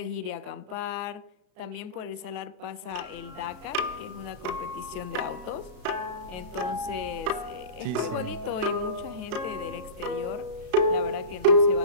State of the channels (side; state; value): left; late; 33 ms